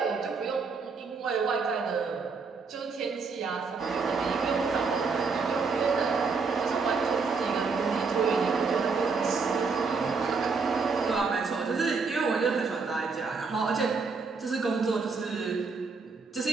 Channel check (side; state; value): left; quieter; 4.8 dB